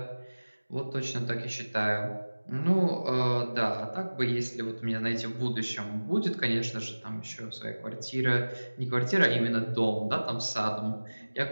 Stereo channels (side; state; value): both; inverted; correlation -1.00